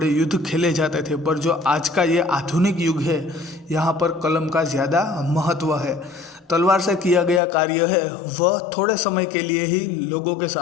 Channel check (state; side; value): drops out; right; at 7.4 s